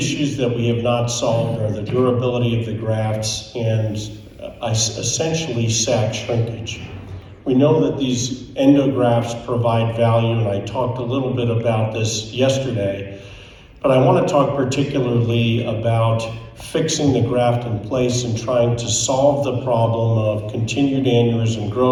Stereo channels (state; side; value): identical; both; correlation 1.00